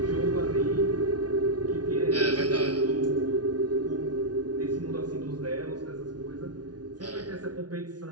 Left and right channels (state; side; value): late; left; 0.69 ms